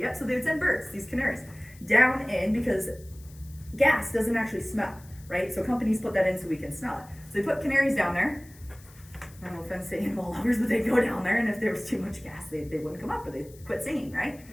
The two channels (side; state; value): left; noise; hiss, 24 dB below the sound